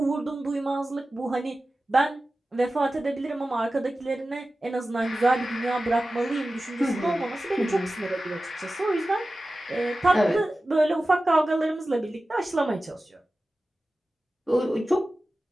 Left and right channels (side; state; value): both; normal; correlation 0.95